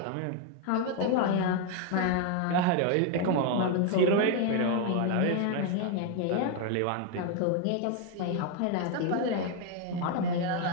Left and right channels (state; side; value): different; both; correlation 0.01